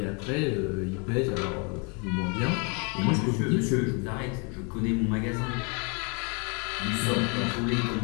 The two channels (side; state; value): right; quieter; 34.1 dB